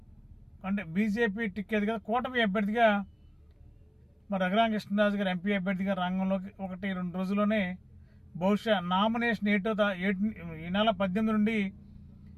అంటే బీజేపీ టికెట్ కదా కూటమి అభ్యర్థిగా మరి రఘురామకృష్ణరాజు గారు ఎంపీ అభ్యర్థిగా రంగంలోకి 1-2 రోజుల్లోనే బహుశా నామినేషన్ ఈ నెల 18 నుండి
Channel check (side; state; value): both; identical; correlation 1.00